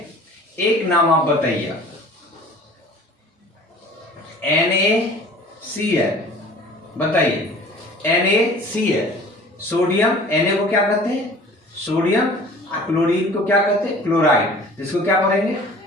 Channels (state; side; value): normal; both; correlation 0.46